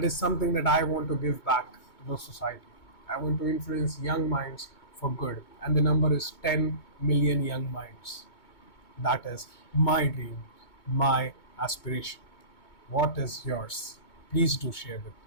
is something that I want to give back to the society. I want to influence young minds for good, and the number is 10 million young minds. That is my dream, my aspiration. What is yours? Please do share with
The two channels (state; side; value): late; right; 2.2 ms